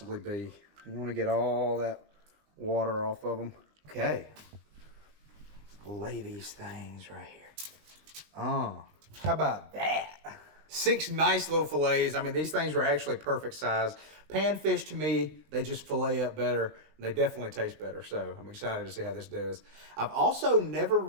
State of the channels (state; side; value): late; left; 19 ms